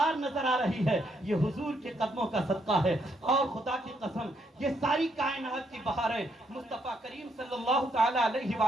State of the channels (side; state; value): both; normal; correlation 0.75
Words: نظر آ رہی ہے یہ حضور کے قدموں کا صدقہ ہے، اور خدا کی قسم یہ ساری کائنات کی بہاریں مصطفیٰ کریم صلی اللہ تعالی علیہ